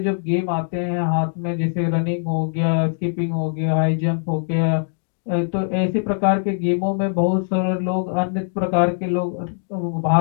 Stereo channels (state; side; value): silent; right; digital silence